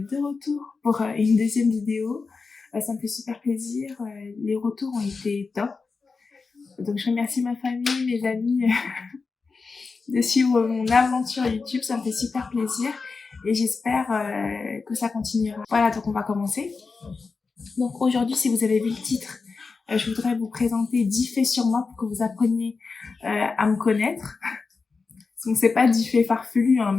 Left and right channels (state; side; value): quieter; right; 4.5 dB